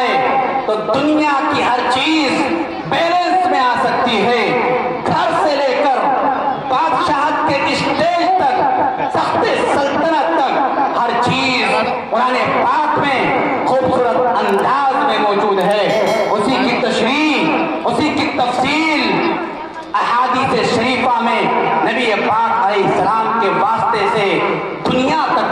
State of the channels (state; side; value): identical; both; correlation 1.00